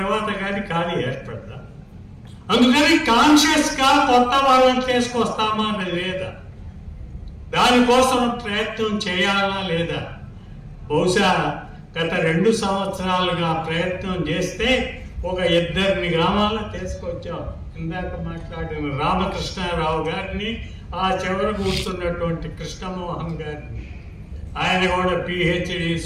కానీ ఖాళీ ఏర్పడతా. అందుకని కాన్షియస్గా కొత్త వాళ్ళని తీసుకొస్తామా లేదా, దానికోసం ప్రయత్నం చేయాలా లేదా? బహుశా గత 2 సంవత్సరాలుగా ప్రయత్నం చేస్తే ఒక 2 గ్రామాల్లో తీసుకొచ్చాం. ఇందాక మాట్లాడిన రామకృష్ణారావు గారిని, ఆ చివర కూర్చున్నటువంటి కృష్ణమోహన్ గారిని, ఆయన కూడా PhD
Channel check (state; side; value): identical; both; correlation 1.00